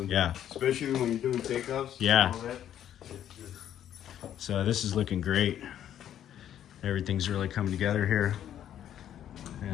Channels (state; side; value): quieter; right; 10.6 dB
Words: Yeah. Especially when you're doing takeoffs. Yeah. So this is looking great. Everything's really coming together here.